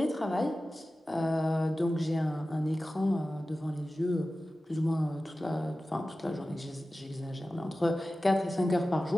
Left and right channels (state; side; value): normal; both; correlation 0.95